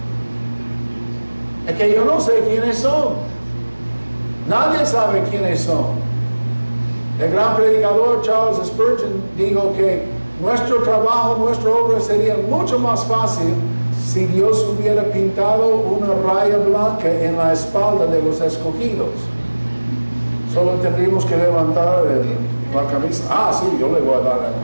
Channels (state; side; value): inverted; both; correlation -1.00